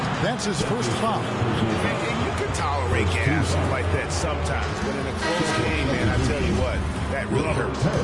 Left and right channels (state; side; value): identical; both; correlation 1.00